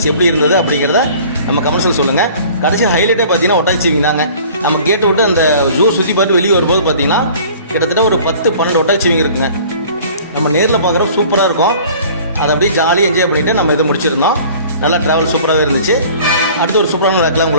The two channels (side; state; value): both; inverted; correlation -0.48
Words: எப்படி இருந்தது அப்படிங்கிறத நம்ம கமெண்ட்ஸில் சொல்லுங்கள். கடைசி ஹைலைட்டே பார்த்தீங்கன்னா ஒட்டாச்சிவிங் தாங்க. நம்ம கேட்டு விட்டு அந்த ஜூ சுற்றி பார்த்து வெளியே வரும்போது பார்த்தீங்கன்னா கிட்டத்தட்ட ஒரு 10-12 ஒட்டாச்சிவிங் இருக்குங்க. நம்ம நேரில் பார்க்குறோம் சூப்பராக இருக்கும். அதை அப்படியே ஜாலியாக என்ஜாய் பண்ணிவிட்டு நம்ம இதை முடிச்சிருந்தோம். நல்லா ட்ராவல் சூப்பராகவே இருந்துச்சு. அடுத்து ஒரு சூப்பரான விளாக்லாம்